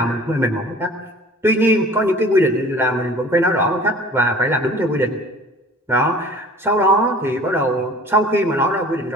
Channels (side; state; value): both; normal; correlation 0.46